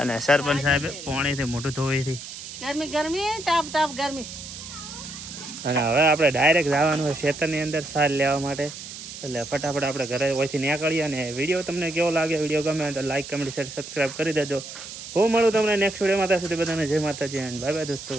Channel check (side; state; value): right; noise; hiss, 11 dB below the sound